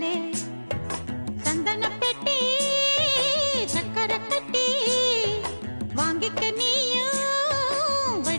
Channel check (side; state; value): both; inverted; correlation -1.00